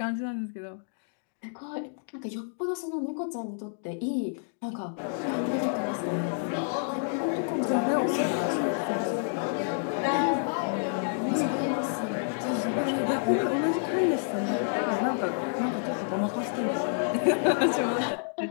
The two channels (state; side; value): silent; right; digital silence